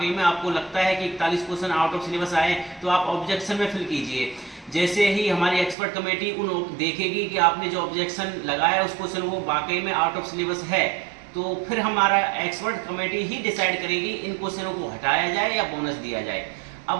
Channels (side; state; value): left; drops out; at 5.8 s